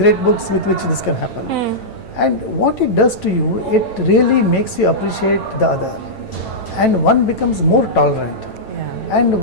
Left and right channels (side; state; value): right; late; 9.0 ms